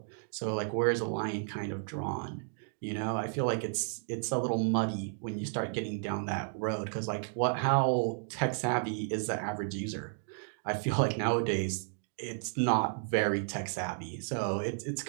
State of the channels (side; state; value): left; silent; digital silence